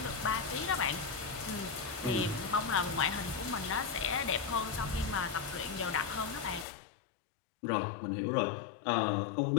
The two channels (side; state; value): right; drops out; at 6.7 s